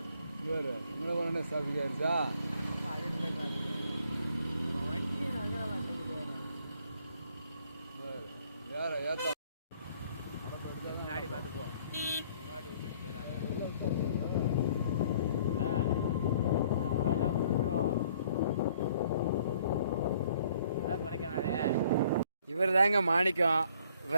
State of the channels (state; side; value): inverted; both; correlation -0.60